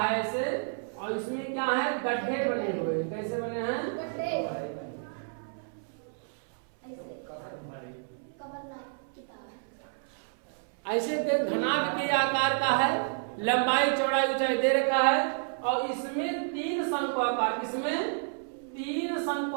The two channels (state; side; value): silent; left; 58 dB below the other